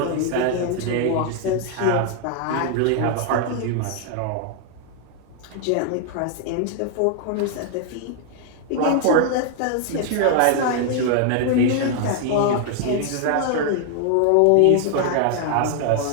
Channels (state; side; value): different; both; correlation 0.00